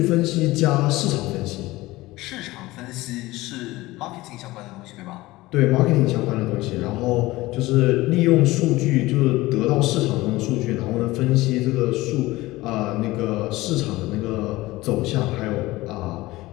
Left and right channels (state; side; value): quieter; right; 19.0 dB